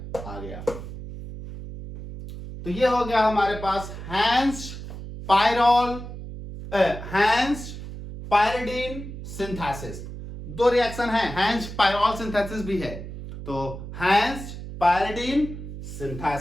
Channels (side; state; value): right; noise; hum, 10 dB below the sound